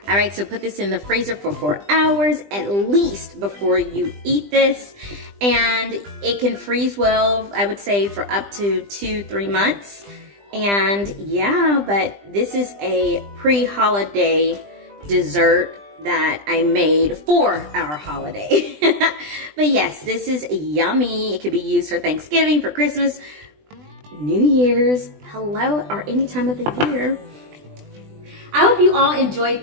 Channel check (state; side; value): late; left; 20 ms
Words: All right, so put this in the freezer for 4 hours at least before you eat this. And it can freeze well, I would say, for up to 2-3 months. And yeah, but this is a pre-holiday dessert that I made for our holiday. But yes, this is yummy. It could be used for Thanksgiving, for Christmas, New Year's, hello, or any time of the year. I hope you all